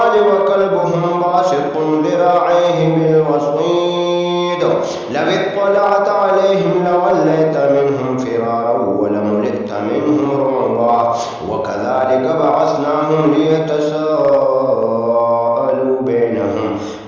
وكلبهم باسط ذراعيه بالوصيد لو اطلعت عليهم لوليت منهم فرارا ولملئت منهم رعبا وكذلك بعثناهم ليتساءلوا بينهم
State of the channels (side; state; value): both; identical; correlation 1.00